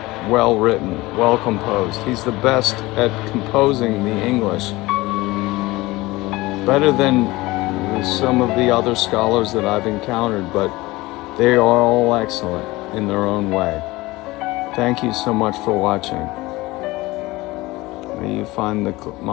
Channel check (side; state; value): right; quieter; 20.2 dB